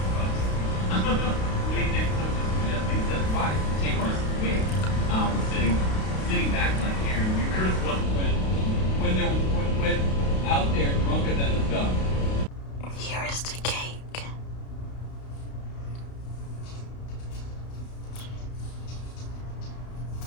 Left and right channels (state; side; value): late; right; 32 ms